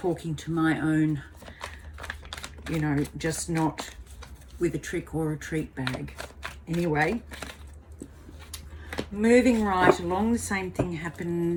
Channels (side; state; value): both; identical; correlation 1.00